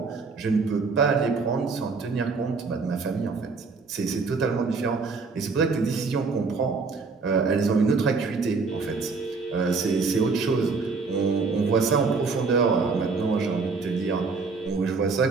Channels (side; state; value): left; quieter; 4.5 dB